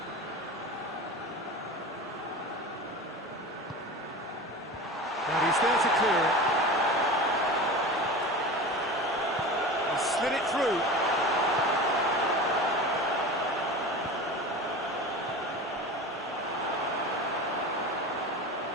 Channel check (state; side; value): normal; both; correlation 0.32